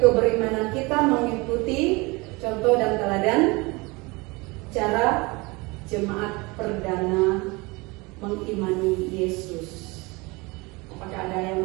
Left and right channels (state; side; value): quieter; left; 25.2 dB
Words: keberimanan kita mengikuti contoh dan teladan cara jemaat perdana mengimani Yesus. Apakah ada yang